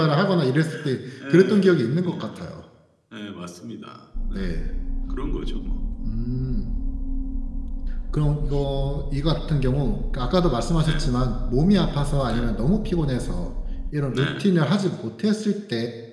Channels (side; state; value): both; identical; correlation 1.00